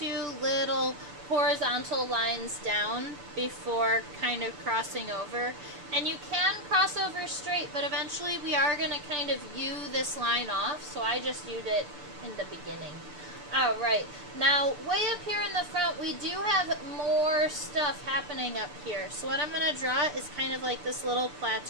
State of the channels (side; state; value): left; late; 6.8 ms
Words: little horizontal lines down before kind of crossing over. And you can cross over straight, but eventually we are going to kind of U this line off, so I just U'd it in the beginning. Alright, now way up here in the front, we do have more stuff happening up here. So what I'm going to draw is kind of like this little